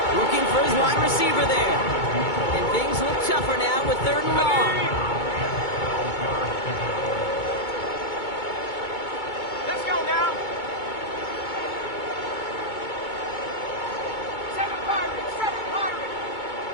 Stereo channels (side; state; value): right; late; 2.2 ms